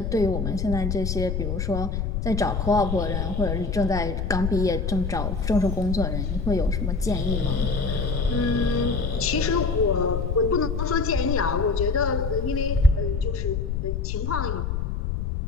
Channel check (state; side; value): noise; left; rumble, 1 dB below the sound